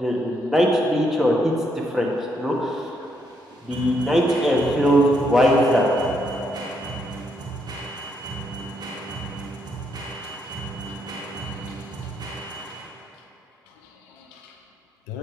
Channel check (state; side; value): normal; both; correlation 0.76